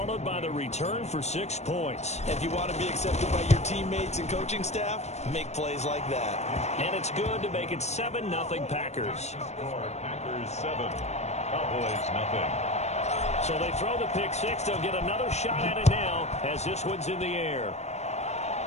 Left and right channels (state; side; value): late; right; 0.32 ms